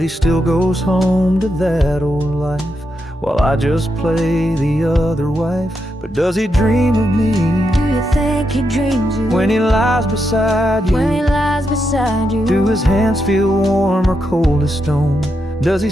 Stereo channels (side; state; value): both; normal; correlation 0.84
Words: he still goes home to that old life, while I just play the other wife. But does he dream of me? Do you think he dreams you? When he lies beside you? When he lies beside you? Do his hands feel warm or cold as stone? Does he